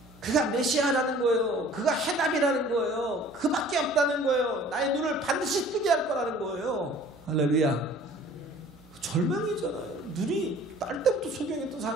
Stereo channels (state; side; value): normal; both; correlation 0.50